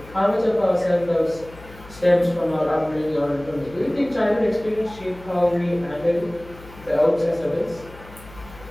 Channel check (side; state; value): left; noise; hum, 19 dB below the sound